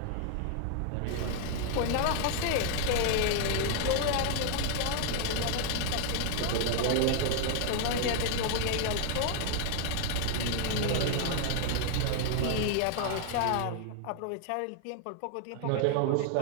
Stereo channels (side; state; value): both; different; correlation 0.00